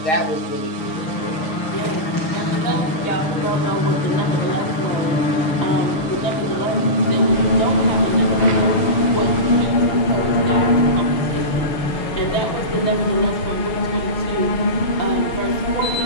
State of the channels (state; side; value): late; right; 6.5 ms